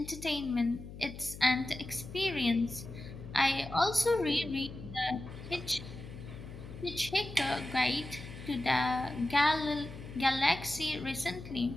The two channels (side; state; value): left; noise; hum, 13 dB below the sound